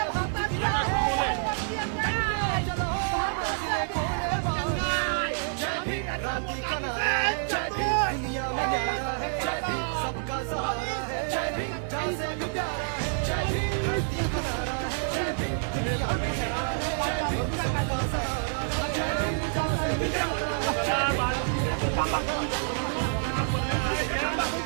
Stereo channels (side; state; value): left; silent; digital silence